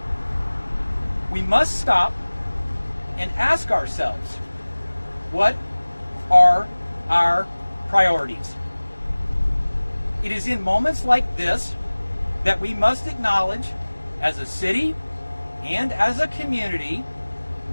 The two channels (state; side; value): inverted; both; correlation -1.00